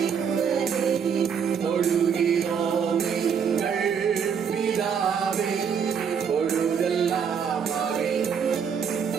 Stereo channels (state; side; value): quieter; left; 7.1 dB